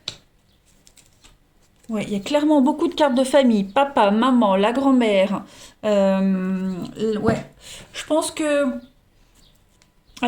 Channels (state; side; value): identical; both; correlation 1.00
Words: Oui, il y a clairement beaucoup de cartes de famille. Papa, maman, la grand-mère. Ouais, je pense que...